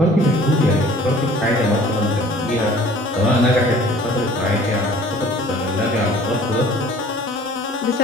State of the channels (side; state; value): both; normal; correlation 0.50